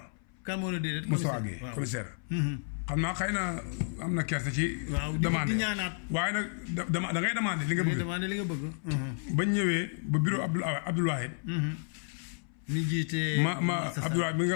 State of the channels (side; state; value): right; silent; 57 dB below the other